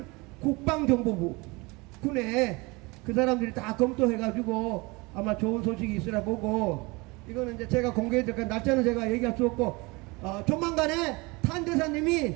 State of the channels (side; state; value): left; quieter; 25.3 dB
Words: 국방정보부, 군에 그 사람들이 다 검토해가지고 아마 좋은 소식이 있으라 보고, 이거는 이제 제가 공개해드릴까 날짜는 제가 얘기할 수 없고, 조만간에 탄대사님이